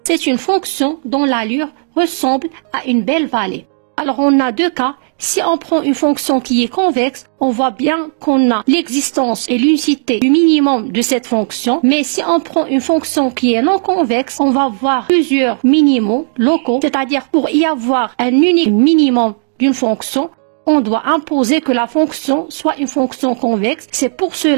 c'est une fonction dont l'allure ressemble à une belle vallée. Alors on a deux cas. Si on prend une fonction qui est convexe, on voit bien qu'on a l'existence et l'unicité du minimum de cette fonction. Mais si on prend une fonction qui est non convexe, on va voir plusieurs minimums locaux. C'est-à-dire pour y avoir un unique minimum d'une fonction, on doit imposer que la fonction soit une fonction convexe. C'est pour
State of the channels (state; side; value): silent; left; digital silence